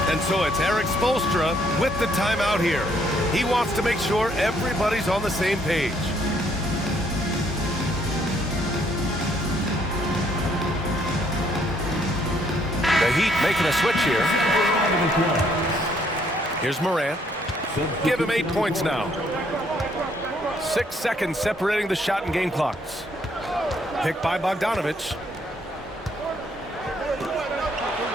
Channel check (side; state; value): both; normal; correlation 0.68